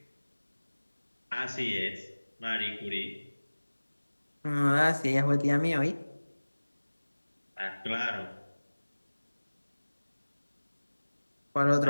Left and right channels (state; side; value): inverted; both; correlation -1.00